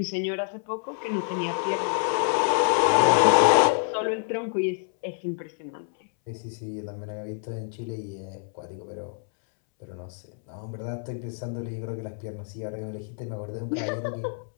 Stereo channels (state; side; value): silent; right; 60 dB below the other